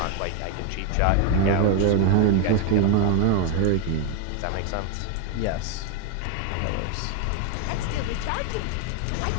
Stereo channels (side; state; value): both; different; correlation 0.01